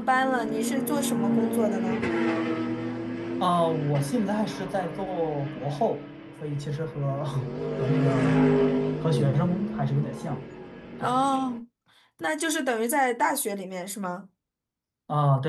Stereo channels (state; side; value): identical; both; correlation 1.00